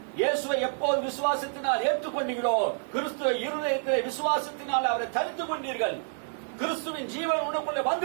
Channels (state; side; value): silent; left; digital silence